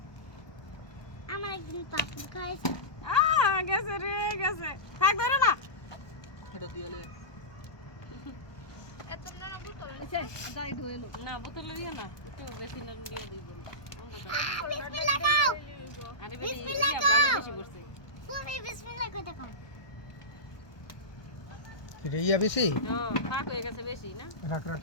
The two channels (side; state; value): right; late; 1.2 ms